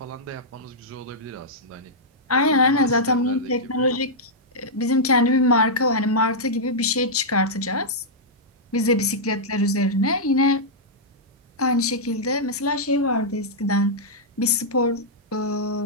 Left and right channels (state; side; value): normal; both; correlation -0.09